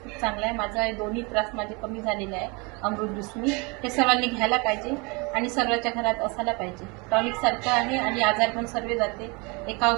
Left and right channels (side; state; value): left; quieter; 29.3 dB